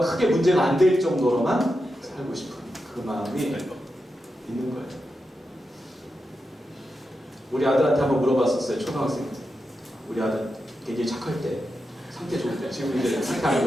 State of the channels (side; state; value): both; normal; correlation 0.88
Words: 크게 문제가 안 될 정도로만 살고 싶은 그 마음이 있는 거예요. 우리 아들한테 한번 물어봤었어요. 초등학생 때. 우리 아들 되게 착할 때, 상태 좋을 때. 지금 이제 상태 안